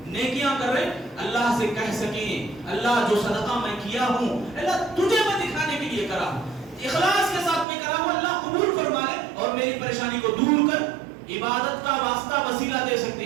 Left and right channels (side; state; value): left; drops out; at 7.7 s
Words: نیکیاں کر رہے ہیں, اللہ سے کہہ سکیں اللہ جو صدقہ میں کیا ہوں اللہ تجھے میں دکھانے کے لیے کرا ہوں, اخلاص کے ساتھ میں کرا ہوں, اللہ قبول فرما لے اور میری پریشانی کو دور کر. عبادت کا واسطہ وسیلہ دے سکتے